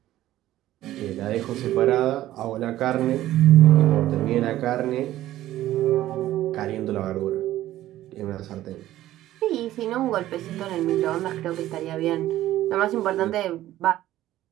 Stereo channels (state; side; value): quieter; left; 14.2 dB